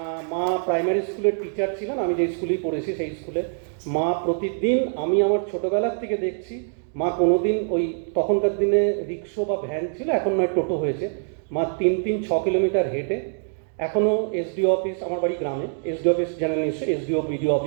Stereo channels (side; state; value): left; silent; digital silence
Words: মা প্রাইমারি স্কুলের টিচার ছিলেন, আমি যে স্কুলেই পড়েছি সেই স্কুলে। মা প্রতিদিন, আমি আমার ছোটোবেলার থেকে দেখছি, মা কোনোদিন ওই তখনকার দিনে রিক্সো বা ভ্যান ছিল, এখন নয় টোটো হয়েছে, মা 3-6 কিলোমিটার হেঁটে, এখনও এসডিও অফিস, আমার বাড়ি গ্রামে, এসডিও অফিস জানেন নিশ্চয়ই, এসডিও বিডিও